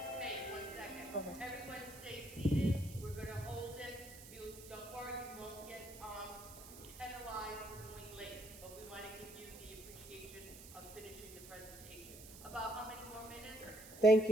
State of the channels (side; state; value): right; noise; hiss, 15 dB below the sound